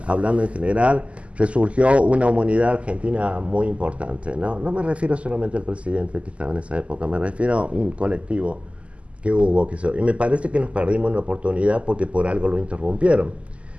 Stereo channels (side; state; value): left; late; 0.059 ms